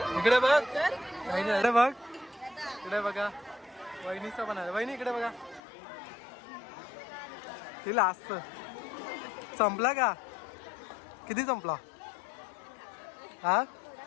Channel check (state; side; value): drops out; right; at 5.6 s